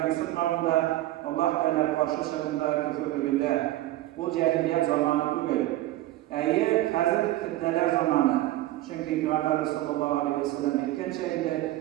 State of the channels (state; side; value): quieter; left; 15.8 dB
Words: kısıtmağında, Allah Teala karşı çıkında, küfürlüğünde. Bu cehiliyet zamanı değil. Hazır fitneler zamanı. Çünkü Peygamber sallallahu aleyhi ve sellem etken